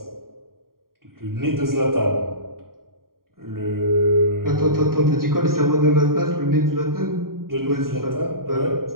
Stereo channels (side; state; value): left; late; 0.92 ms